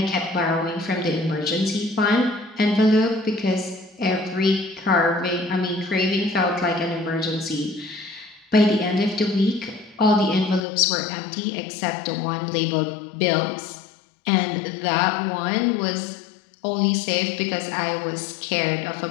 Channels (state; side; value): drops out; right; at 10.7 s